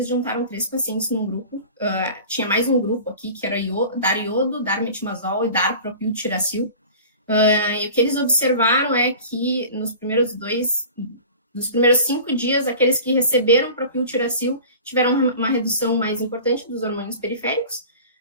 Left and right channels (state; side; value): inverted; both; correlation -0.40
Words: juntaram 3 pacientes num grupo, tinha mais um grupo aqui, que era dar iodo, dar metimazol e dar propiltiracil. E o que eles observaram é que nos primeiros 5 dias, aqueles que receberam propiltiracil tiveram uma redução mais importante dos hormônios periféricos.